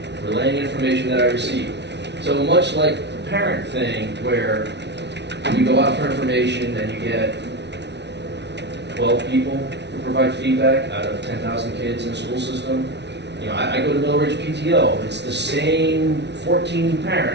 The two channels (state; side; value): late; left; 0.50 ms